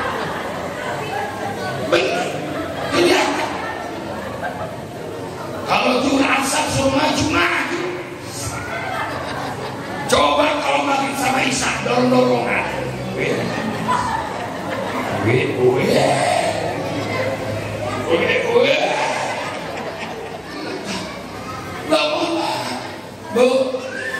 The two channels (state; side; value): identical; both; correlation 1.00